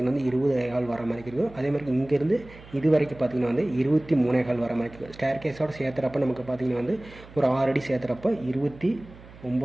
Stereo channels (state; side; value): noise; right; hum, 20 dB below the sound